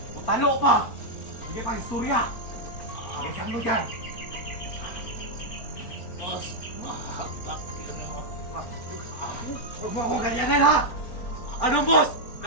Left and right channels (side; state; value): right; late; 4.4 ms